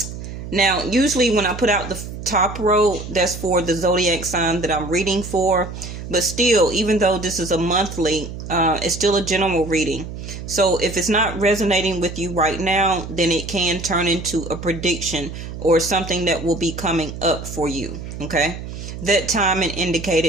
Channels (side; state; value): right; noise; hum, 9 dB below the sound